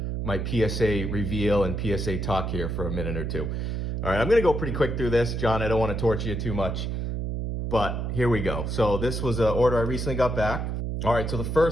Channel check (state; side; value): noise; right; hum, 2 dB below the sound